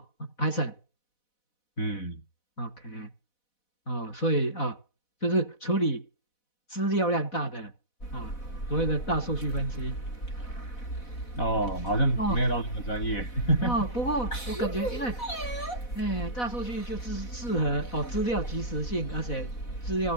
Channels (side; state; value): right; late; 4.1 ms